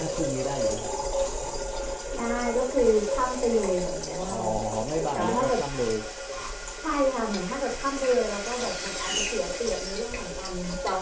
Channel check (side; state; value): both; identical; correlation 1.00